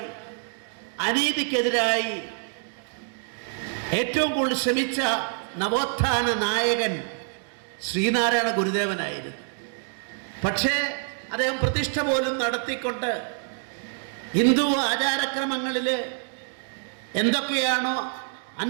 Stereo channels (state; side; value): silent; left; 57 dB below the other